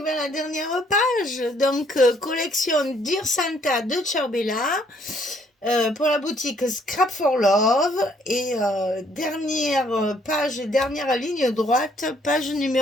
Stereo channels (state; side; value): normal; both; correlation 0.65